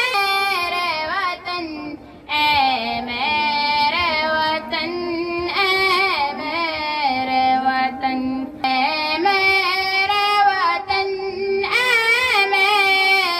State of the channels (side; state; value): both; identical; correlation 1.00